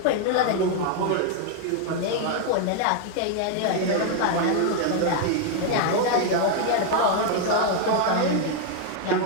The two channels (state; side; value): different; both; correlation 0.00